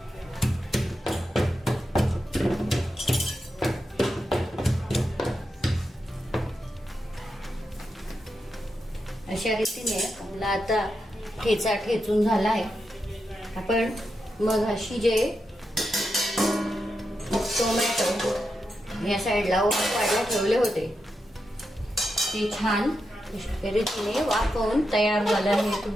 अशा रीतीने आपला आता ठेचा ठेचून झाला आहे. आपण मग अशी जे टोमॅटो या साईडला वाढला ठेवले होते ते छान रीतीने वाफवून तयार झालं आहे,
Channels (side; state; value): both; normal; correlation 0.87